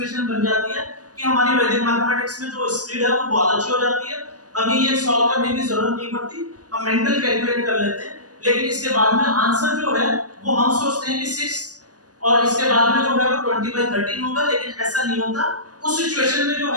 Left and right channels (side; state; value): left; late; 0.68 ms